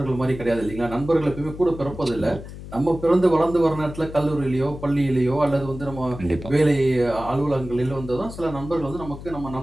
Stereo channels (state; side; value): noise; left; hum, 13 dB below the sound